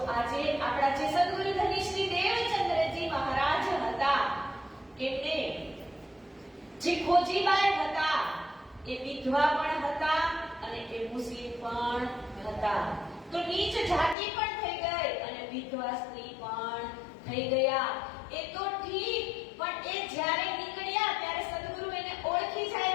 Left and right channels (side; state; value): right; drops out; at 14.2 s